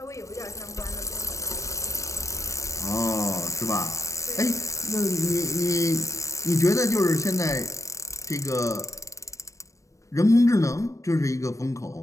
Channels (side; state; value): right; late; 0.15 ms